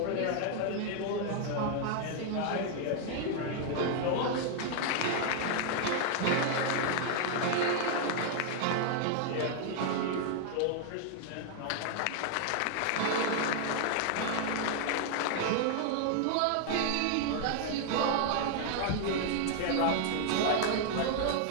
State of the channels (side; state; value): both; different; correlation 0.00